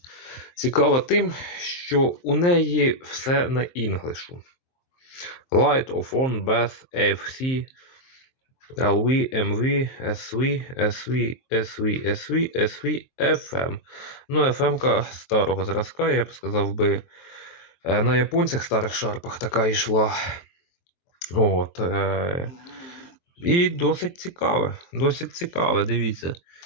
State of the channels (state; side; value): late; right; 23 ms